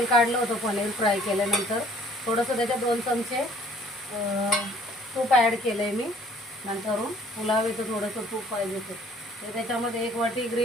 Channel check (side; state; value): both; normal; correlation 0.57